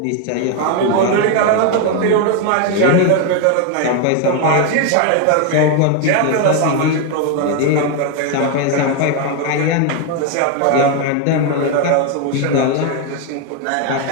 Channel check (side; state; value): both; different; correlation 0.01